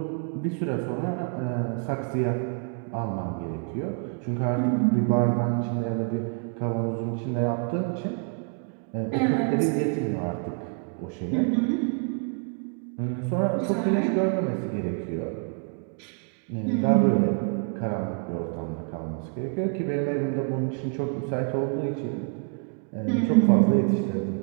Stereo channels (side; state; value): left; quieter; 39.5 dB